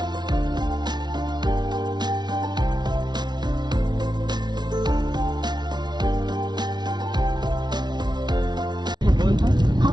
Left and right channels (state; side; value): late; left; 0.20 ms